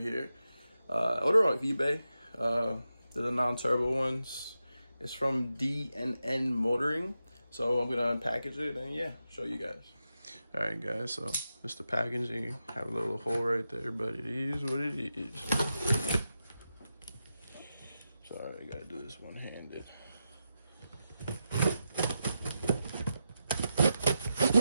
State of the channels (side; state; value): both; inverted; correlation -0.88